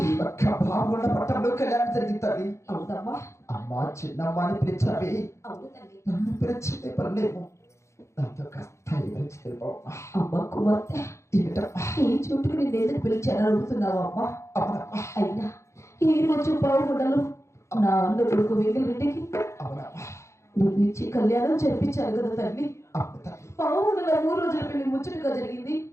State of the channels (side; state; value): right; late; 0.14 ms